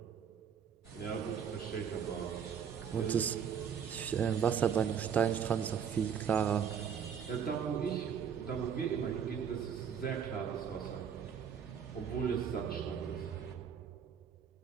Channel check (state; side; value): quieter; left; 7.6 dB